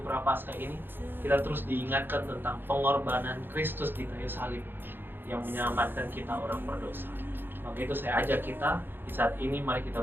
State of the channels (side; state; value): left; late; 0.099 ms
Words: Prapaskah ini kita terus diingatkan tentang pengorbanan Kristus di kayu salib yang menyelamatkan kita orang berdosa. Maka itu saya ajak kita di saat ini, mari